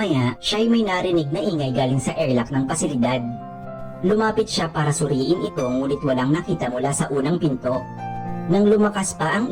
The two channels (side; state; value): both; identical; correlation 1.00